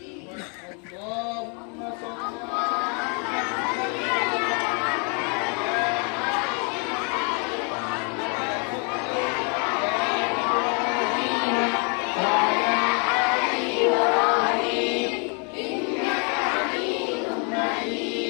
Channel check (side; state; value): right; quieter; 36.9 dB